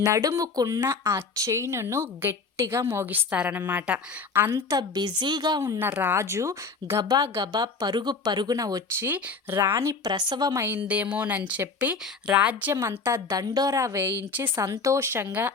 నడుముకున్న ఆ చైనును గట్టిగా మోగిస్తారనమాట. అంత బిజీగా ఉన్న రాజు గబా పరుగున వచ్చి రాణి ప్రసవమైందేమోనని చెప్పి రాజ్యమంతా దండోరా వేయించి సంతోషంగా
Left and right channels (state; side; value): quieter; right; 4.6 dB